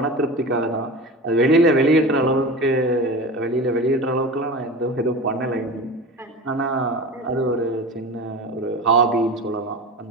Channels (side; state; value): both; normal; correlation 0.31